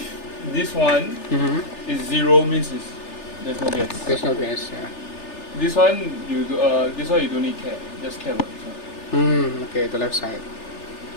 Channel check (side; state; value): right; late; 3.4 ms